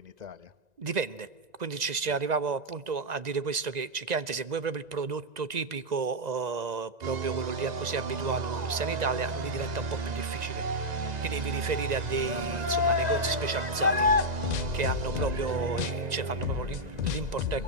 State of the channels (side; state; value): left; late; 1.9 ms